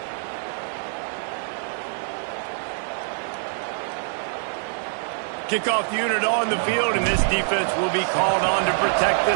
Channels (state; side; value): silent; left; 62 dB below the other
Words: Kickoff unit on the field, and this defense will be called on to protect